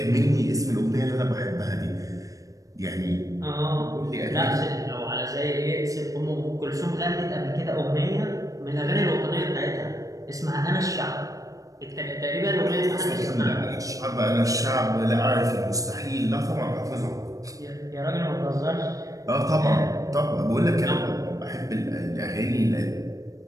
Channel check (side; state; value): left; late; 0.16 ms